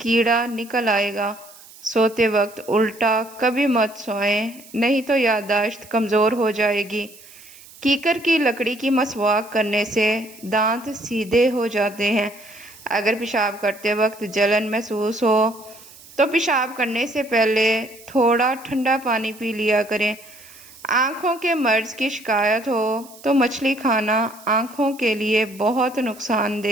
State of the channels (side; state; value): right; noise; hiss, 21 dB below the sound